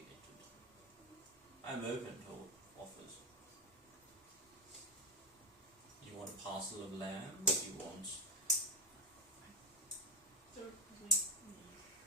I'm open to offers. You want a parcel of land? You want... So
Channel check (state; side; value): normal; both; correlation 0.09